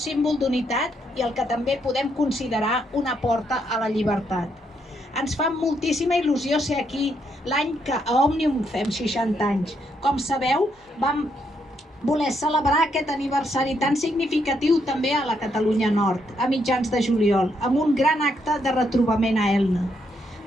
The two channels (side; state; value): both; normal; correlation 0.76